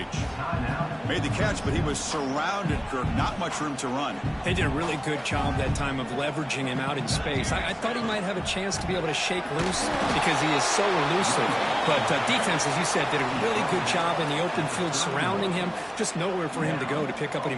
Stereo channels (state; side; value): identical; both; correlation 1.00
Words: Made the catch, but he was surrounded, Kirk. Not much room to run. They did a really good job that time of leveraging him out in space. I thought he might have a chance to be able to shake loose because he is so elusive. But defense, as you said, did a really good job in the open field surrounding him. Just nowhere for him to go to pick up any